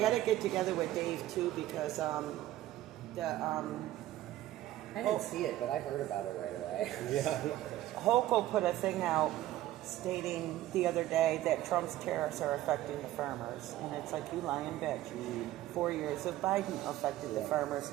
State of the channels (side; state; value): left; quieter; 14.7 dB